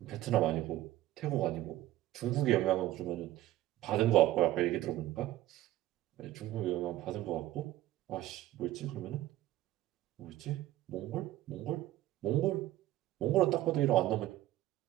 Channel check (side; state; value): left; quieter; 15.1 dB